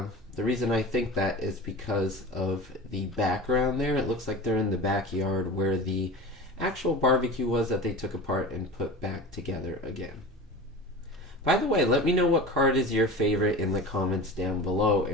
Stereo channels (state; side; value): normal; both; correlation 0.33